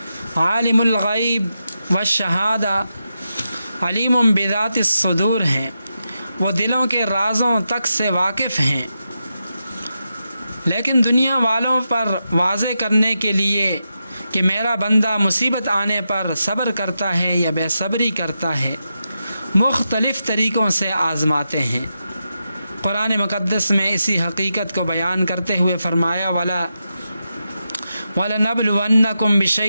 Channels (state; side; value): inverted; both; correlation -0.88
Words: عالم الغیب والشہادہ، علیم بذات الصدور ہیں۔ وہ دلوں کے رازوں تک سے واقف ہیں، لیکن دنیا والوں پر واضح کرنے کے لیے کہ میرا بندہ مصیبت آنے پر صبر کرتا ہے یا بے صبری کرتا ہے، مختلف طریقوں سے آزماتے ہیں۔ قرآن مقدس میں اسی حقیقت کو بیان کرتے ہوئے فرمایا وَلَنَبْلُوَنَّكُمْ